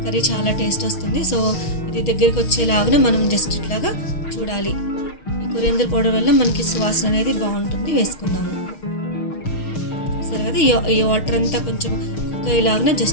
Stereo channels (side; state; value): right; late; 6.5 ms